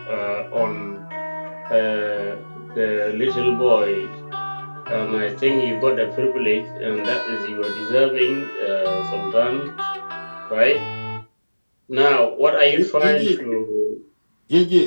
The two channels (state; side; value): inverted; both; correlation -1.00